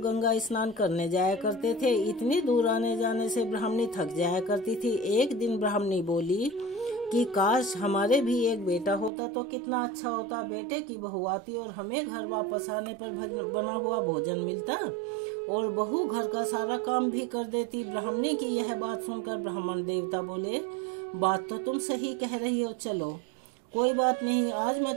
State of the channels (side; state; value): left; drops out; at 9.1 s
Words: स्नान करने जाया करते थे। इतनी दूर आने जाने से ब्राह्मणी थक जाया करती थी। एक दिन ब्राह्मणी बोली कि काश हमारे भी एक बेटा होता तो कितना अच्छा होता। बेटे की बहू आती और हमें घर वापस आने पर बना हुआ भोजन मिलता और बहू घर का सारा काम भी कर देती। ब्राह्मणी की यह बात सुनकर ब्राह्मण देवता बोले, बात तो तुम सही कह रही हो, चलो कोई बात नहीं, आज मैं